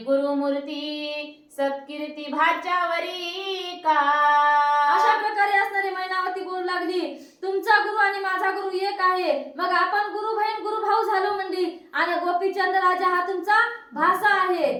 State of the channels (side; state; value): both; identical; correlation 1.00